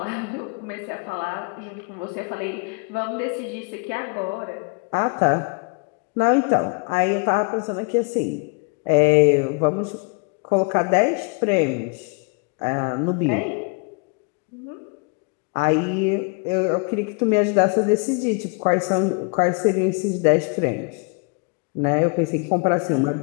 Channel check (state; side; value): quieter; right; 33.4 dB